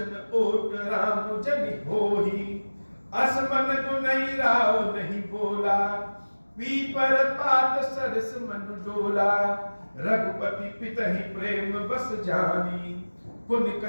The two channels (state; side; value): inverted; both; correlation -1.00